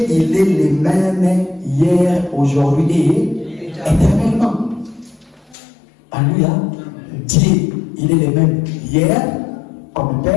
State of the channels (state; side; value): drops out; right; at 5.6 s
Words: il est le même hier, aujourd'hui et éternellement. Alléluia. Dieu, il est le même hier, comme